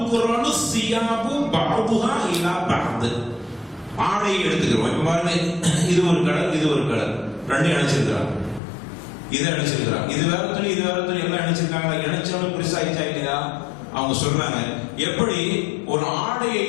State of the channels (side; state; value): right; drops out; at 8.6 s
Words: சியாபு பஅதுஹா இலா பஅத். ஆடையை எடுத்துக்கிறோம். இப்ப பாருங்க, இது ஒரு கலர், இது ஒரு கலர், ரெண்டையும் இணைச்சிருக்கிறாங்க. இதை இணைச்சிருக்கிறாங்க, இது வேற துணி, இது வேற துணி, எல்லாம் இணைச்சிருக்காங்க. இணைச்சவங்க பெருசா ஆயிடுச்சா இல்லையா? அவங்க சொல்றாங்க, எப்படி ஒரு ஆடையை